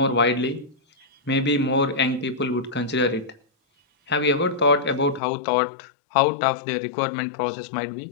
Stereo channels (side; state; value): right; drops out; at 5.2 s